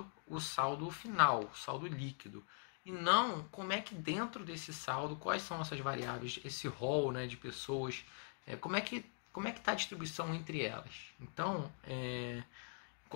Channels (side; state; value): right; quieter; 39.6 dB